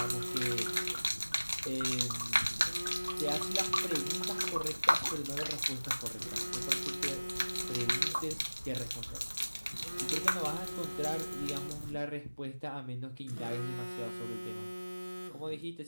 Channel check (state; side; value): inverted; both; correlation -1.00